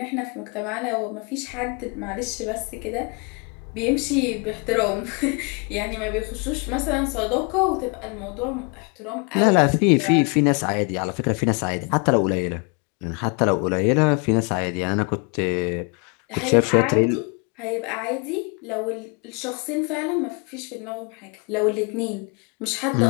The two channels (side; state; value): right; quieter; 33.3 dB